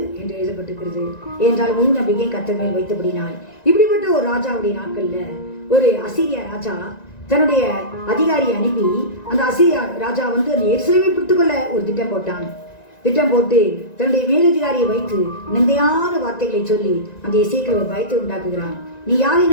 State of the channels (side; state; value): right; late; 1.9 ms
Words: என்று எழுதப்பட்டிருக்கிறது. ஏனென்றால் முழு நம்பிக்கை கர்த்தர் மேல் வைத்தபடினால். இப்படிப்பட்ட ஒரு ராஜாவுடைய நாட்கள்ல ஒரு அசீரியா ராஜா தன்னுடைய அதிகாரியை அனுப்பி அந்த அசீரியா ராஜா வந்து அந்த எருசலேமை பிடித்துக்கொள்ள ஒரு திட்டம் போட்டான். திட்டம் போட்டு தன்னுடைய மேலதிகாரியை வைத்து நிந்தையான வார்த்தைகளை சொல்லி அந்த எசேக்கியேல் ஒரு பயத்தை உண்டாக்குகிறான். நீ யாரை